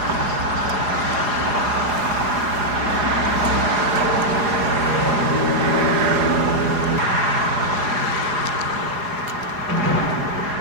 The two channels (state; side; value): late; left; 4.8 ms